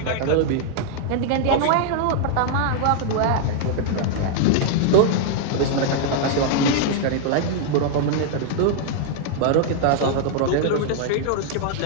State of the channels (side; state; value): both; different; correlation 0.00